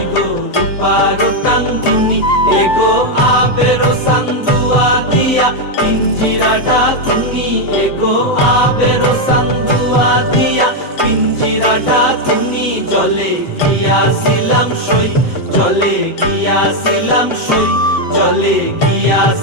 রূপারো টাঙ্গুনি, এগো আবেরো সান্দুয়া দিয়া পিঞ্জিরাটা তুমি, এগো আবেরো সান্দুয়া দিয়া পিঞ্জিরাটা তুমি। জলে গিয়াছিলাম সই, জলে গিয়াছিলাম সই, জলে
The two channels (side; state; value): right; late; 7.8 ms